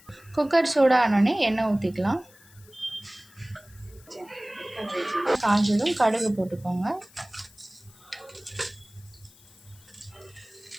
குக்கர் சூடானோடனே எண்ணெய் ஊற்றிக்கலாம். காஞ்சதும் கடுகு போட்டுக்கோங்க.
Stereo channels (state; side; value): noise; left; hiss, 26 dB below the sound